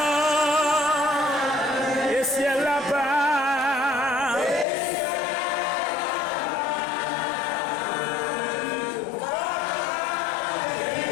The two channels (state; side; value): drops out; right; at 4.7 s